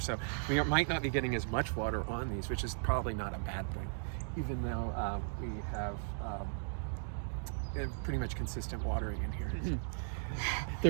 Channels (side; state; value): left; silent; digital silence